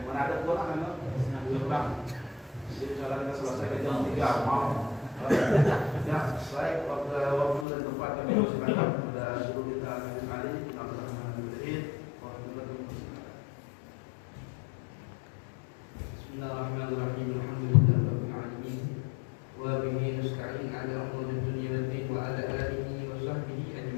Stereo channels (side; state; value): right; drops out; at 7.7 s